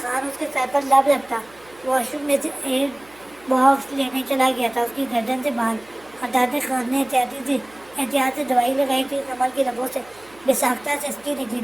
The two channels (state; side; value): noise; right; hum, 26 dB below the sound